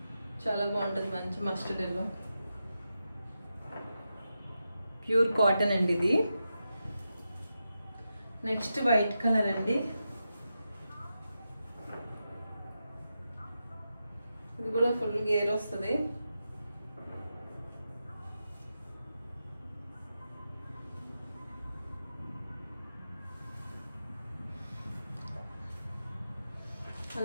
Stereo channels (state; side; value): inverted; both; correlation -0.89